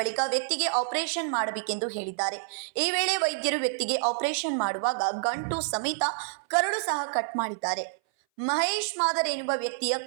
ವ್ಯಕ್ತಿಗೆ ಆಪರೇಷನ್ ಮಾಡಬೇಕೆಂದು ಹೇಳಿದ್ದಾರೆ. ಈ ವೇಳೆ ವೈದ್ಯರು ವ್ಯಕ್ತಿಗೆ ಆಪರೇಷನ್ ಮಾಡುವಾಗ ಗಂಟು ಸಮೇತ ಕರಳು ಸಹ ಕಟ್ ಮಾಡಿದ್ದಾರೆ. ಮಹೇಶ್ ಮಾದರ್ ಎನ್ನುವ ವ್ಯಕ್ತಿಯ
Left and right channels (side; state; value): left; silent; 58 dB below the other